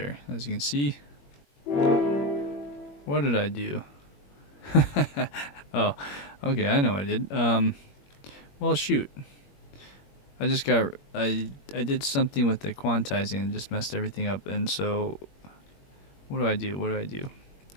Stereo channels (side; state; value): right; late; 21 ms